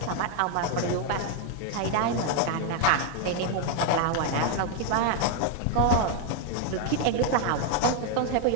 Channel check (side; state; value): both; different; correlation 0.00